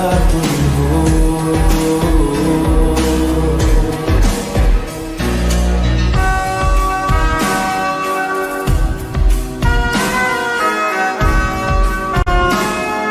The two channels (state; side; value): identical; both; correlation 1.00